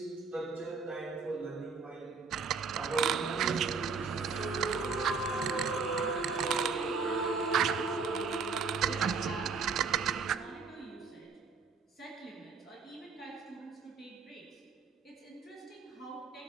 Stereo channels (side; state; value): left; quieter; 5.1 dB